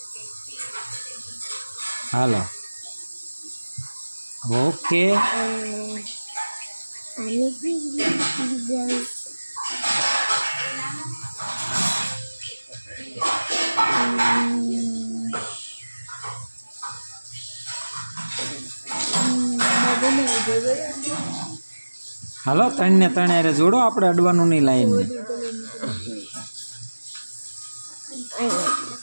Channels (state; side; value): inverted; both; correlation -1.00